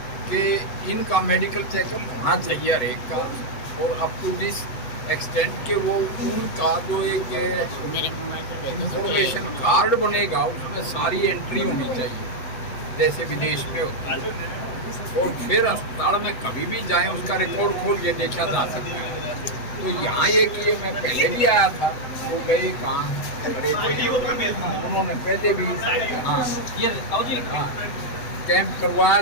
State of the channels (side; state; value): right; late; 8.0 ms